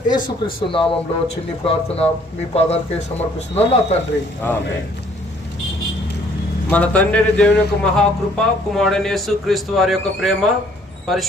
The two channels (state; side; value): normal; both; correlation 0.61